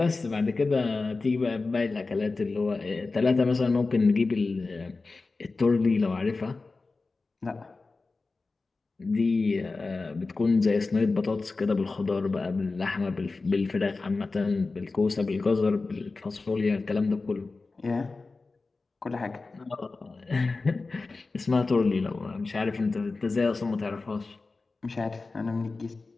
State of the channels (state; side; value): quieter; right; 3.8 dB